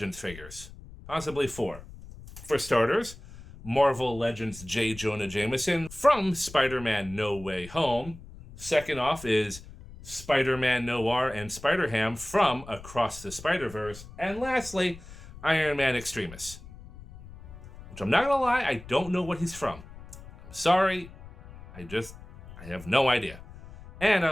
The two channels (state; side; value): noise; left; rumble, 17 dB below the sound